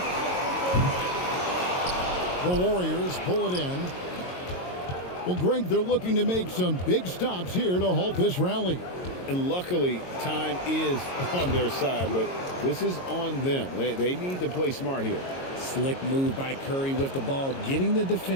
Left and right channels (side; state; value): right; late; 22 ms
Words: The Warriors pull it in. Well, Greg, they're looking to make some big stops here to halt this rally. And luckily, time is on their side, but this is on them. They need to play smart here. Slick move by Curry with the ball, getting the